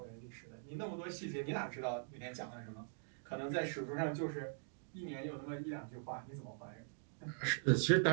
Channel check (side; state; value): left; silent; digital silence